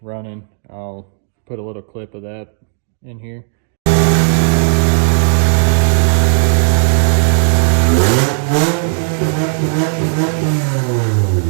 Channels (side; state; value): left; silent; digital silence